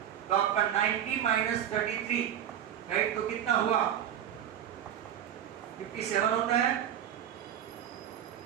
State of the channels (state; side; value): quieter; left; 10.1 dB